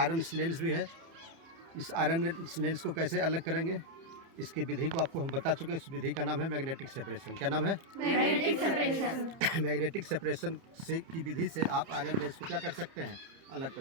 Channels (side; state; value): left; late; 30 ms